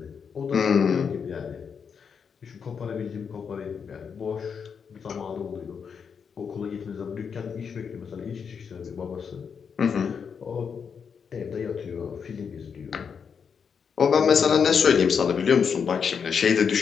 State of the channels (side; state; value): right; quieter; 6.5 dB